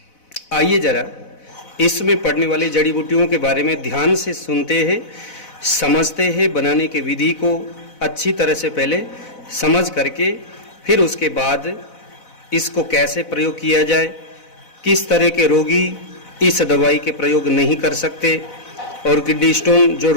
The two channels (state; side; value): late; right; 4.0 ms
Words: आइए जरा इसमें पड़ने वाली जड़ी बूटियों के बारे में ध्यान से सुनते हैं, समझते हैं। बनाने की विधि को अच्छी तरह से पहले समझ करके फिर उसके बाद इसको कैसे प्रयोग किया जाए, किस तरह के रोगी इस दवाई के प्रयोग नहीं कर सकते और किडनी स्टोन जो